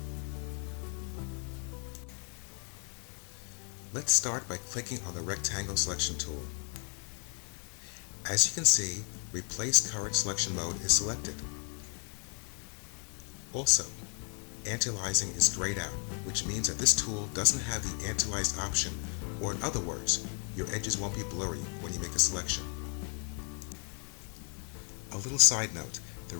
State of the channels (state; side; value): quieter; right; 39.9 dB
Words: Let's start by clicking on the rectangle selection tool. As you can see, Replace Current Selection mode is selected. Also, Anti-Aliasing is grayed out, which means that this tool doesn't have the Anti-Aliased option, or in other words, your edges won't be blurry when you make a selection. A little side note, the